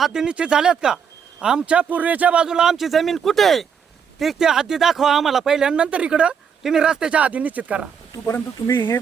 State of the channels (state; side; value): quieter; left; 7.1 dB